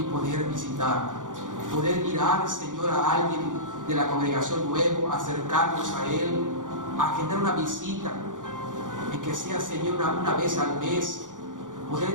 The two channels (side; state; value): left; late; 0.87 ms